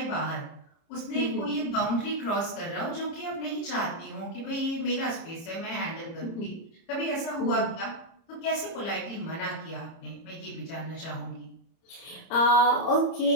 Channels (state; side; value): late; right; 30 ms